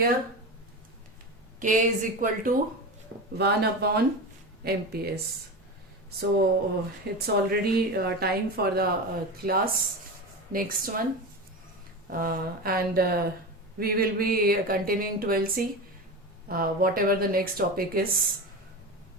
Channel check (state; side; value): normal; both; correlation 0.24